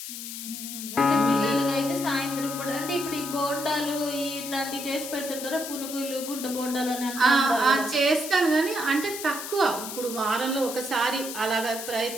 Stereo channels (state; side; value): noise; left; hiss, 8 dB below the sound